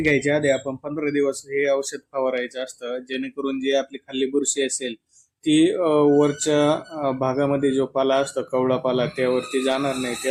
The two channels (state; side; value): identical; both; correlation 1.00